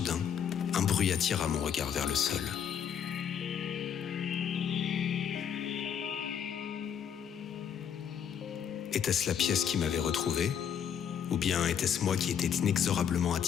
un bruit attira mon regard vers le sol. Était-ce la pièce qui m'avait retrouvé, ou bien était-ce moi qui étais inexorablement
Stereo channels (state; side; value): quieter; right; 8.2 dB